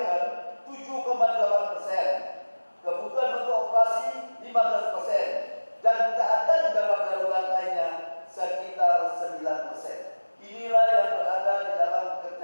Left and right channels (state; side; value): inverted; both; correlation -1.00